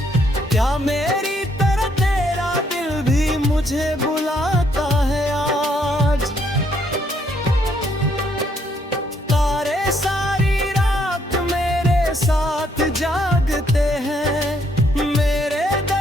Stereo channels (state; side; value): normal; both; correlation 0.70